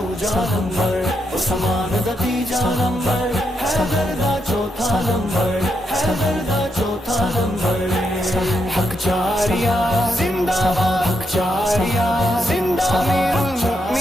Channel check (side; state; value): both; normal; correlation 0.81